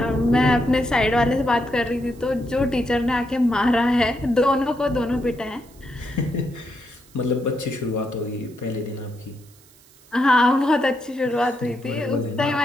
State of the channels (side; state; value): right; noise; hiss, 27 dB below the sound